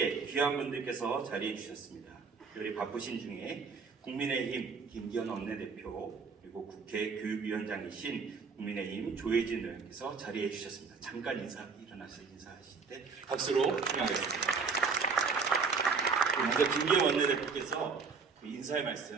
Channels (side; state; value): left; quieter; 5.1 dB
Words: 귀한 분들께서 자리해 주셨습니다. 특별히 바쁘신 중에 국민의힘 김기현 원내대표, 그리고 국회 교육위원장이신 국민의힘 조혜진 의원께서 자리해 주셨습니다. 잠깐 일어나서 인사하실 때 박수로 환영하겠습니다. 먼저 김기현 원내대표께서 인사의